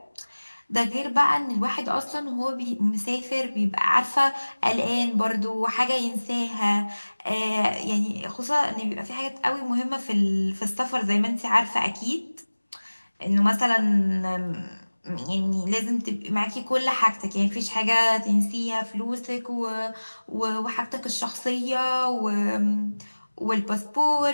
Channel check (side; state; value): both; inverted; correlation -1.00